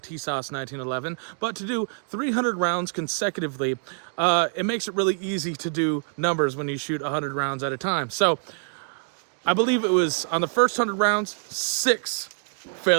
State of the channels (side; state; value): left; silent; 61 dB below the other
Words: 1911. But to do 300 rounds consecutively, it makes it really easy to do numbers when you shoot 100 rounds at a time. So I believe it was on the first 100 rounds, 6